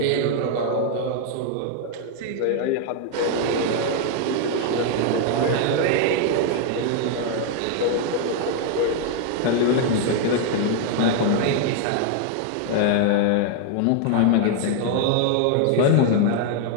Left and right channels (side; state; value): both; different; correlation 0.00